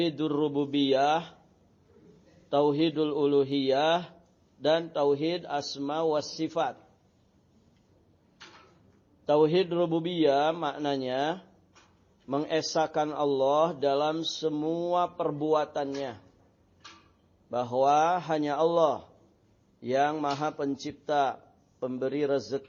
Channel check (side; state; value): both; identical; correlation 1.00